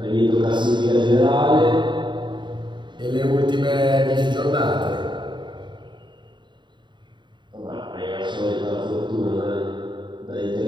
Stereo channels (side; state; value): left; late; 0.23 ms